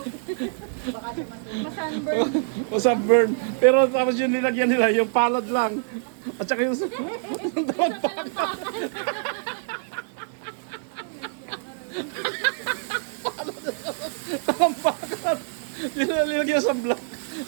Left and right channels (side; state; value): left; silent; digital silence